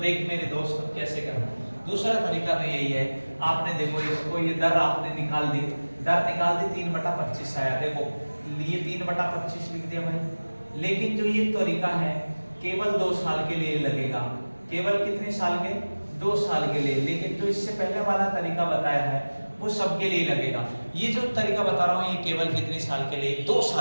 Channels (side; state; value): both; inverted; correlation -1.00